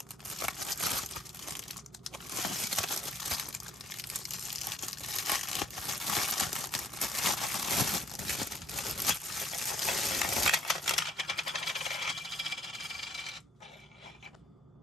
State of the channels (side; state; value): both; normal; correlation 0.64